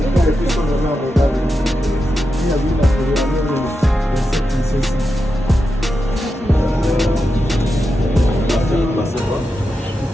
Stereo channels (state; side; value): normal; both; correlation 0.88